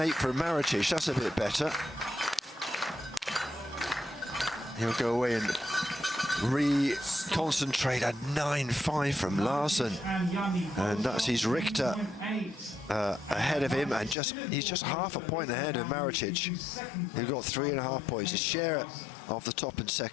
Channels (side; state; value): right; drops out; at 14.2 s